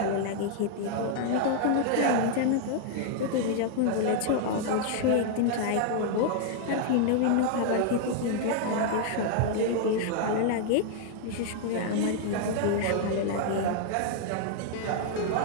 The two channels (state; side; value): different; both; correlation 0.00